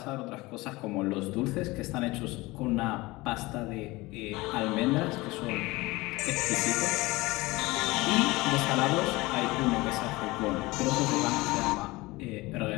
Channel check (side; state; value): right; quieter; 21.4 dB